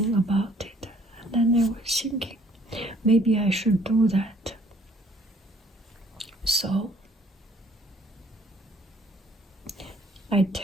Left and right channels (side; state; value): both; normal; correlation 0.60